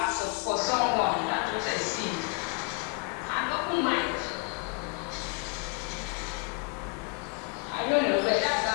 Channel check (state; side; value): quieter; right; 30.8 dB